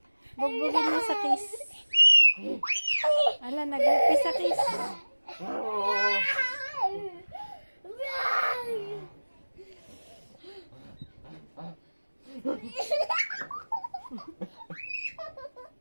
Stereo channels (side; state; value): both; inverted; correlation -1.00